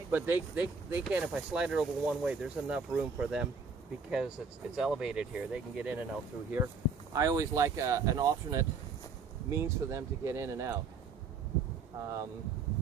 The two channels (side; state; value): left; quieter; 4.7 dB